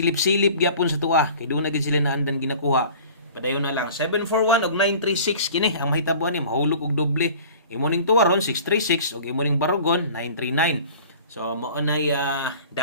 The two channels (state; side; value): inverted; both; correlation -0.44